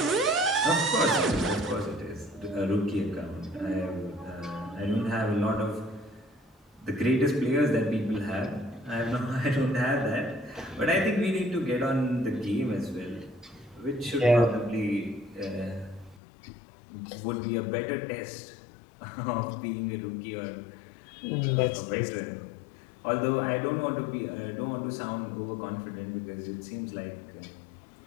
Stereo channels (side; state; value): right; drops out; at 16.2 s